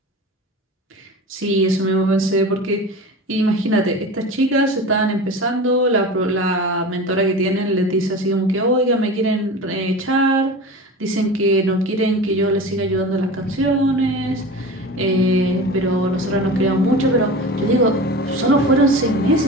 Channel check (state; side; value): normal; both; correlation 0.32